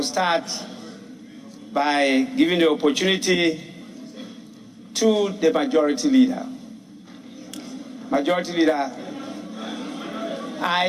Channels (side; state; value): both; identical; correlation 1.00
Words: start by giving the opportunity to the Majority Leader. Majority Leader,